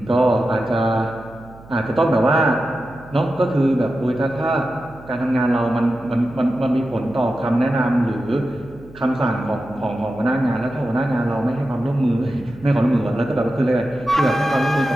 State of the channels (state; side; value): noise; right; hum, 21 dB below the sound